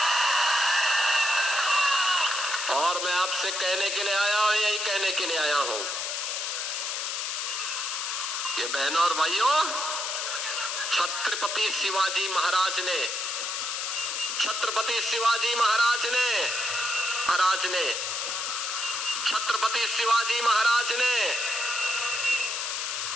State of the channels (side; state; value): left; noise; hiss, 2 dB below the sound